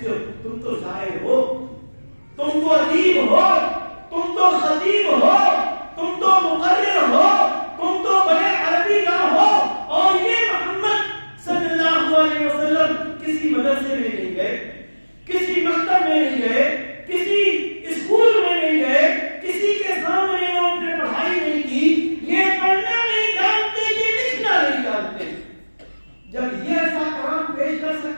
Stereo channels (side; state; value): both; inverted; correlation -1.00